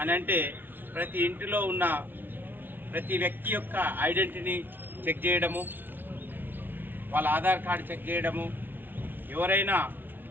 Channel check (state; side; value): late; left; 0.094 ms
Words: అని అంటే ప్రతి ఇంటిలో ఉన్న ప్రతి వ్యక్తి యొక్క ఐడెంటిటీని చెక్ చేయడము, వాళ్ళ ఆధార్ కార్డు చెక్ చేయడము, ఎవరైనా